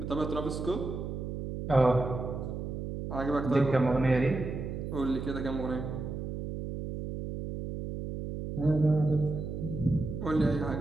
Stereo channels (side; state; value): right; noise; hum, 5 dB below the sound